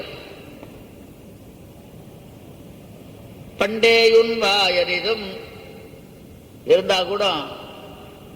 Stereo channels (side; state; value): both; identical; correlation 1.00